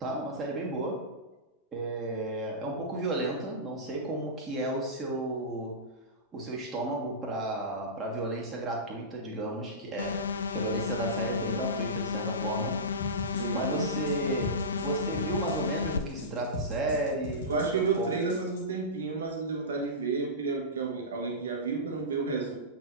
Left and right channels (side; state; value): both; normal; correlation -0.19